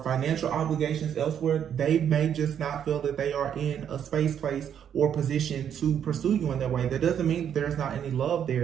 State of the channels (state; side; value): quieter; left; 8.9 dB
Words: financial obligations elsewhere, they may just not feel that they are in a space, place, or position to pursue you in that way. That doesn't mean that there's not any love